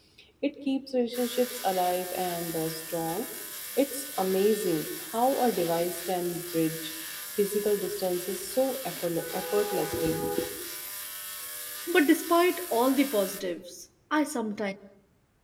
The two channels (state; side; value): identical; both; correlation 1.00